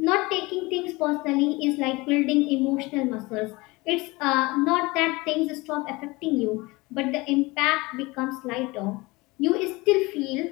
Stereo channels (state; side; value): quieter; right; 23.0 dB